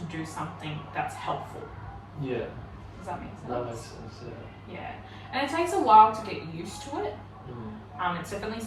do something that's helpful. Yeah. Does that make sense? That makes sense. Yeah. Yeah. And it takes a while to get used to it. Mm. It's definitely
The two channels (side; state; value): both; identical; correlation 1.00